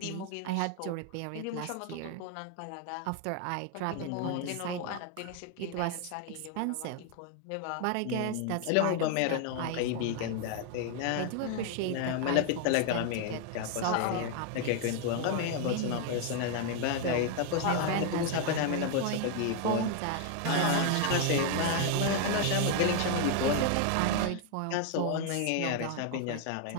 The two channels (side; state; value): both; different; correlation 0.00